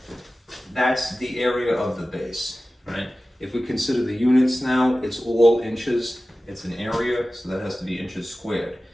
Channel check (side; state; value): both; normal; correlation 0.96